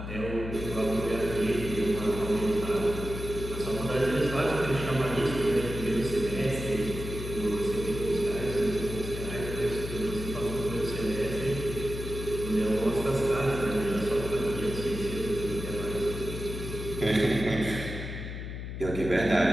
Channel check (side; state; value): left; noise; hum, 7 dB below the sound